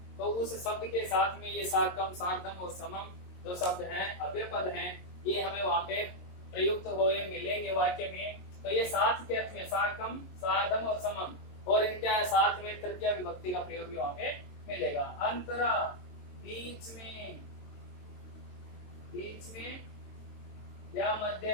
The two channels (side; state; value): right; late; 22 ms